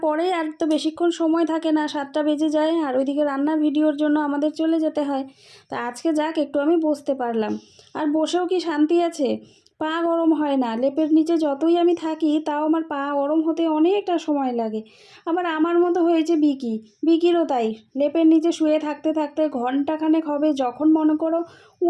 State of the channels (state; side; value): identical; both; correlation 1.00